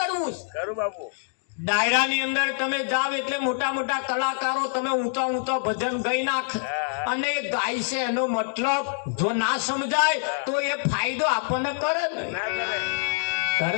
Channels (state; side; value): silent; right; digital silence